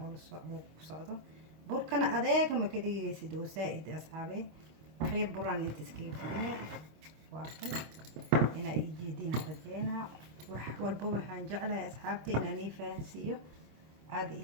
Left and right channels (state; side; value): late; left; 26 ms